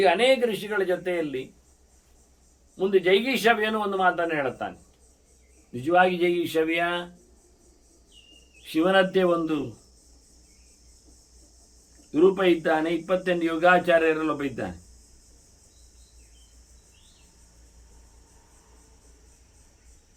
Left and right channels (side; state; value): both; identical; correlation 1.00